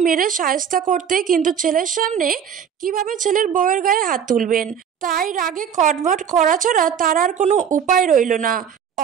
মেরে শায়েস্তা করতে, কিন্তু ছেলের সামনে কিভাবে ছেলের বউয়ের গায়ে হাত তুলবেন, তাই রাগে কটমট করা ছাড়া তার আর কোনো উপায় রইল না।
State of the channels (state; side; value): quieter; left; 8.1 dB